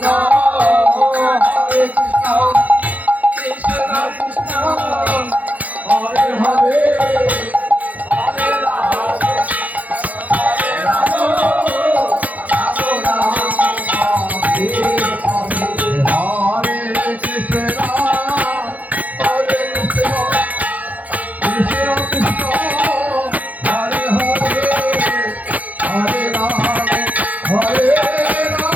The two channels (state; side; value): late; left; 0.076 ms